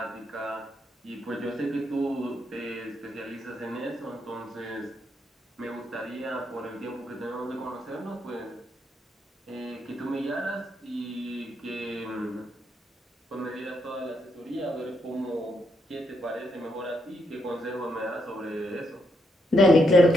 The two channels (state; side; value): normal; both; correlation 0.78